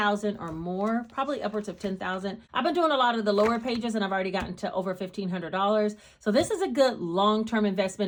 or more, probably upwards of $10,000. I've been doing a lot of the lower pages, and I've already gotten to over $1,500. So this is a good long-term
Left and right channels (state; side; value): identical; both; correlation 1.00